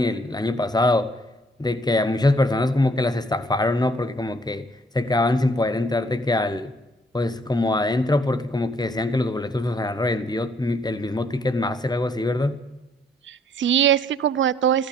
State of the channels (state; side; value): normal; both; correlation 0.64